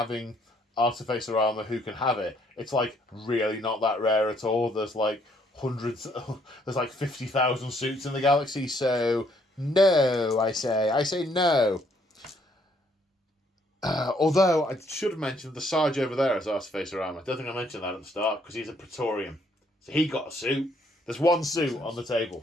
Artificer armour who can have it, it's like really not that rare at all. There's like hundreds, there's like 50,000 suits in the galaxy, so no, I say no. Although I should have mentioned the Sarge over there has Artificer armour. I don't think I mentioned that at the start because he's a Praetorian. So he got a suit. There's one suit on the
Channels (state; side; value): normal; both; correlation 0.68